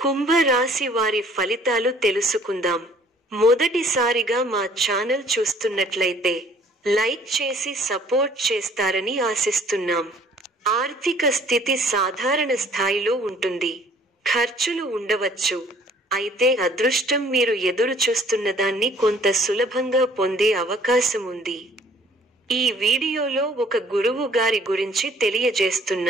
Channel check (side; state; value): both; normal; correlation 0.56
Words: రాశి వారి ఫలితాలు తెలుసుకుందాం. మొదటిసారిగా మా ఛానల్ చూస్తున్నట్లయితే లైక్ చేసి సపోర్ట్ చేస్తారని ఆశిస్తున్నాం. ఆర్థిక స్థితి సాధారణ స్థాయిలో ఉంటుంది. ఖర్చులు ఉండవచ్చు. అయితే అదృష్టం మీరు ఎదురు చూస్తున్నదాన్ని కొంత సులభంగా పొందే అవకాశం ఉంది. ఈ వీడియోలో ఒక గురువు గారి గురించి